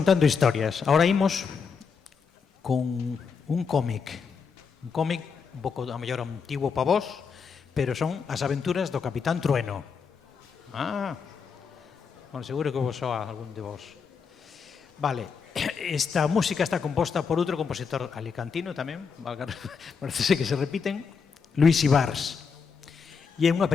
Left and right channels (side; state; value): right; quieter; 5.8 dB